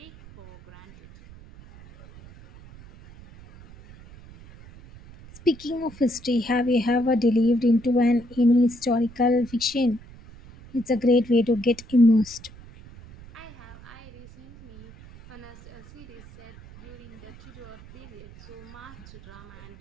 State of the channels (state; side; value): noise; right; rumble, 19 dB below the sound